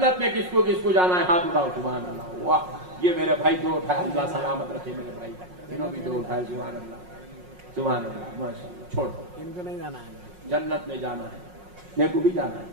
میں کس کو جانا ہے؟ ہاتھ اٹھاؤ. سبحان اللہ. واہ، یہ میرے بھائی 2 اٹھائے، اللہ سلامت رکھے میرے بھائی. انہوں بھی 2 اٹھائے. سبحان اللہ. سبحان اللہ ماشاء اللہ. چھوڑ ان کو نہیں جانا ہے، جنت میں جانا ہے، میرے کو بھی جانا ہے.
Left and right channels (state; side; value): late; left; 5.5 ms